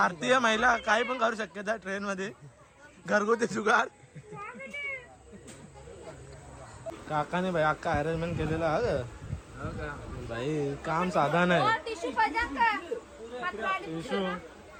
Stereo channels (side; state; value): both; identical; correlation 1.00